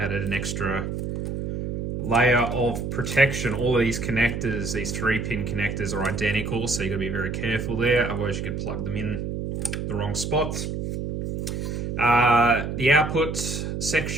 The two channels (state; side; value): noise; right; hum, 4 dB below the sound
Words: extra layer of protection. All of these connectors, these 3-pin connectors, are identical, so you've got to be very careful there, otherwise you could plug them in the wrong spots. The output